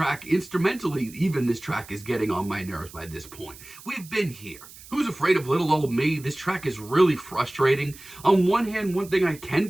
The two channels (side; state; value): right; noise; hiss, 19 dB below the sound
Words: instrumentally, even this track is getting on my nerves by this point. We've been here. Who's Afraid of Little Old Me? This track is really frustrating. On one hand, one thing I can